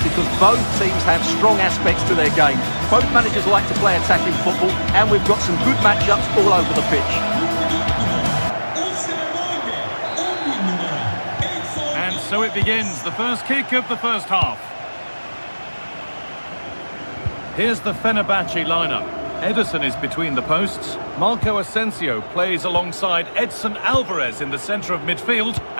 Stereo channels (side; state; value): both; inverted; correlation -1.00